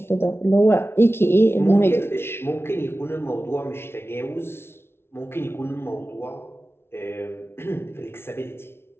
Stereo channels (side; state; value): right; late; 0.12 ms